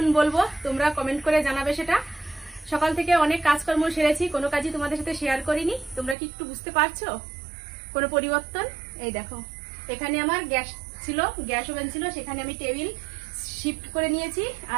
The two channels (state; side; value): drops out; left; at 6.2 s